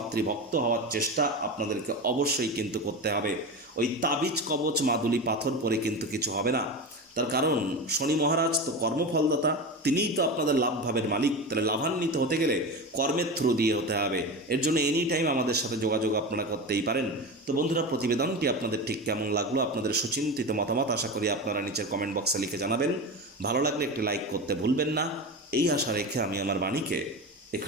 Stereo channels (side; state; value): both; normal; correlation 0.24